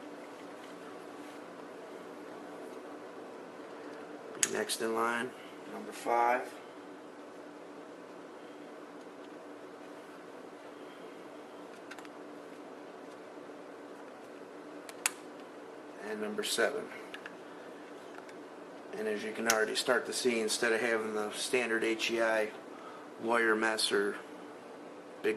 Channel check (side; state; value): both; identical; correlation 1.00